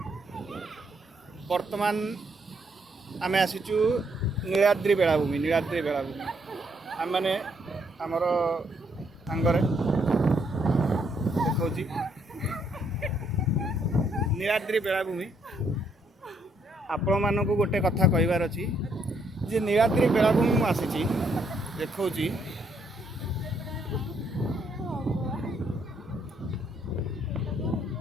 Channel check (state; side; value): normal; both; correlation 0.72